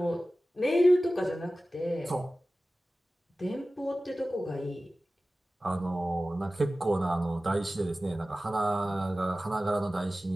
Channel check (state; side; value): normal; both; correlation 0.96